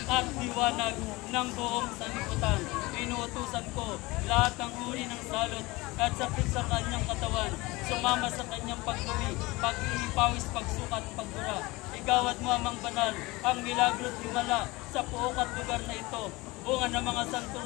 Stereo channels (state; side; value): quieter; right; 22.3 dB